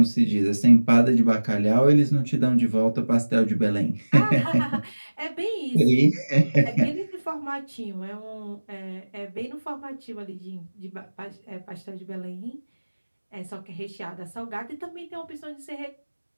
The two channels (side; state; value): both; inverted; correlation -1.00